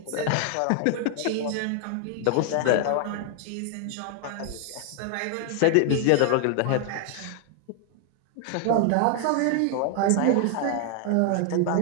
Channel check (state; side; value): different; both; correlation 0.00